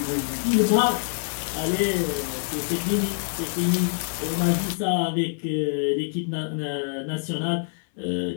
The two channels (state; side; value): silent; right; 59 dB below the other